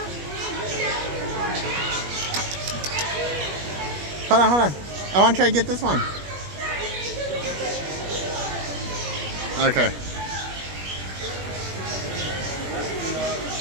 Hold on, hold on. I want to try to get this one. Okay.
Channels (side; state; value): left; late; 21 ms